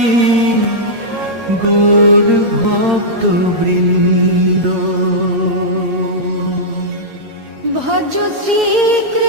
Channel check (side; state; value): left; late; 8.7 ms